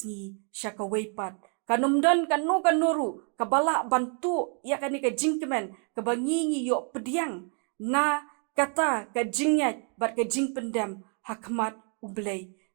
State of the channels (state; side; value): quieter; left; 37.6 dB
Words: sya ka wei pat kanumdan kanu kanuru kabala bantu ya kani ka jing kemen ka bangi yo pediang na kata ka jingyat bat ka jing pendam hakmat U Blei.